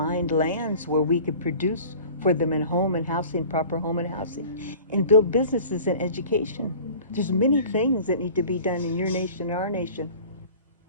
lands where we could produce for them in home and housing, proper home and housing, and build businesses and education. There's many things that need to be done in your nation, our nation.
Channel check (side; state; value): both; inverted; correlation -0.44